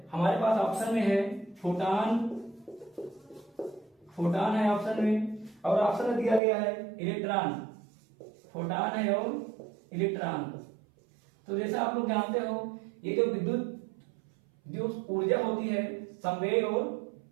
हमारे पास ऑप्शन में है फोटान है ऑप्शन में, और ऑप्शन में दिया गया है इलेक्ट्रॉन। फोटान है और इलेक्ट्रॉन। तो जैसा आप लोग जानते हो ये जो विद्युत जो ऊर्जा होती है, संवेग और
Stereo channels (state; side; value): drops out; left; at 6.4 s